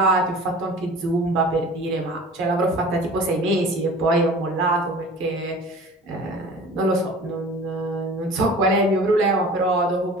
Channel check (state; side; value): normal; both; correlation 0.42